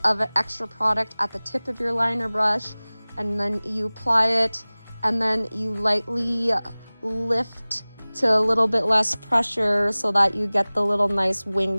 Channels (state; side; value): inverted; both; correlation -1.00